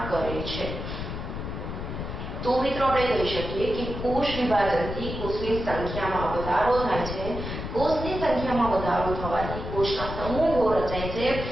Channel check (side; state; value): left; noise; rumble, 6 dB below the sound